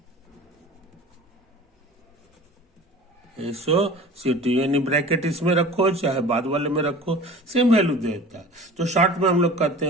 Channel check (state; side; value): normal; both; correlation 0.41